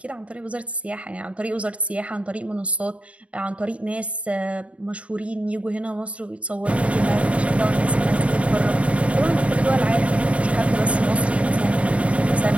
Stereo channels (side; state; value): left; late; 0.064 ms